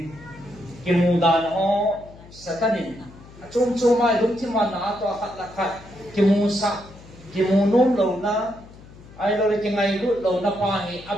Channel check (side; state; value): left; noise; hum, 20 dB below the sound